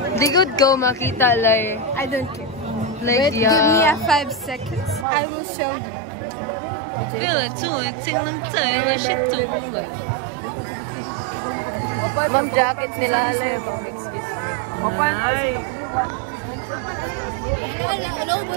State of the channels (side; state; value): left; drops out; at 5.1 s